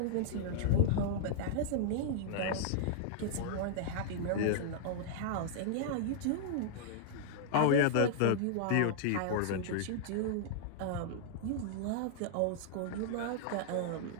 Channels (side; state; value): both; different; correlation -0.01